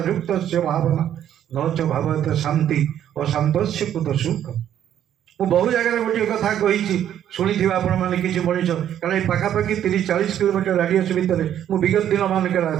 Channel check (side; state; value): left; quieter; 10.5 dB